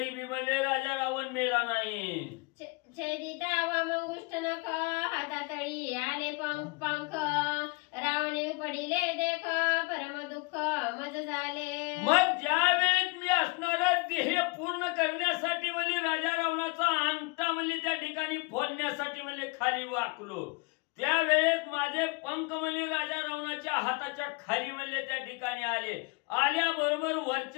बी म्हणजे राजा रावण मेला नाही. छेदिता वामंगुष्ट नख हातातळी आले पंख रावणे पडिले देख परम दुःख मज झाले. मग ज्या वेळेस मी असणारा ध्येय पूर्ण करण्यासाठी म्हणजे राजा रावणाचा अंगठा म्हणजे त्या ठिकाणी फोडण्यासाठी म्हणजे खाली वाकलो त्यावेळेस माझे पंख म्हणले राजा रावणाच्या हाताच्या खाली म्हणले त्या ठिकाणी आल्याबरोबर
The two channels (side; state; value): right; quieter; 28.2 dB